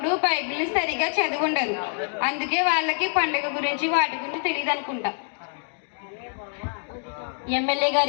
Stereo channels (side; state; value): right; silent; 56 dB below the other